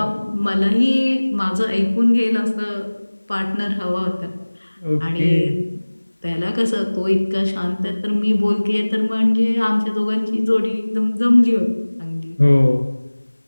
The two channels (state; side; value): inverted; both; correlation -1.00